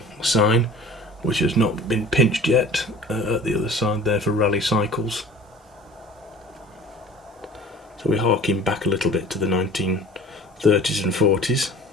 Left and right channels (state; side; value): normal; both; correlation 0.44